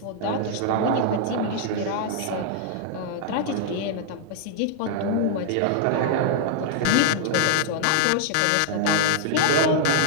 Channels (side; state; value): both; different; correlation 0.00